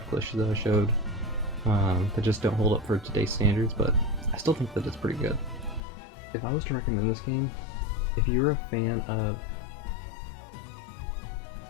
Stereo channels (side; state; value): right; drops out; at 5.8 s